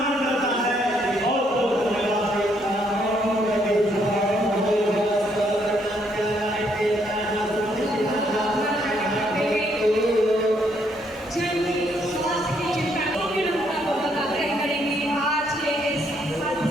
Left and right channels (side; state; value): both; normal; correlation 0.71